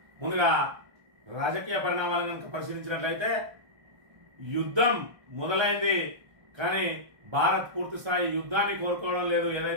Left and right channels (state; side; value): late; left; 1.3 ms